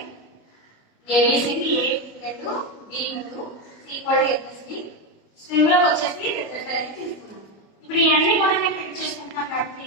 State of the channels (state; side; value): late; right; 25 ms